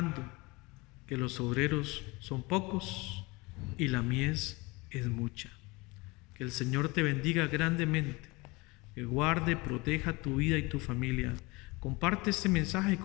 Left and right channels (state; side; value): quieter; right; 24.7 dB